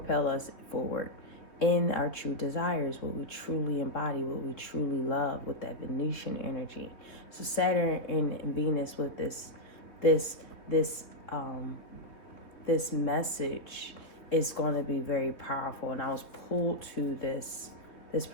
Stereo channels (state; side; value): late; right; 3.4 ms